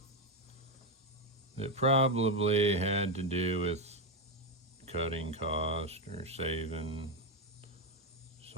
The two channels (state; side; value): normal; both; correlation 0.07